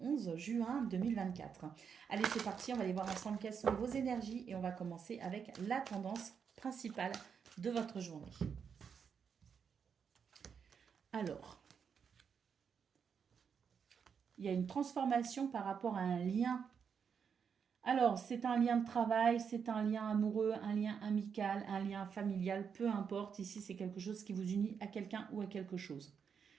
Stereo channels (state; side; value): quieter; left; 6.8 dB